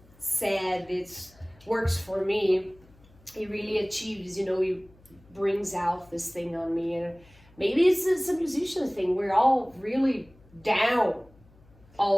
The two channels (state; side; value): noise; left; hum, 28 dB below the sound